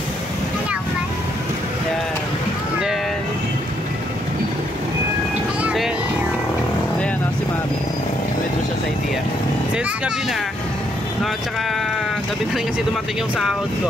Hello, man. Ayan. And then ayan o, si Mami. Withdraw siya sa idea. Since gabi na, no, tsaka gabi na rin kasi dumating yung sahod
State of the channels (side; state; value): both; normal; correlation 0.73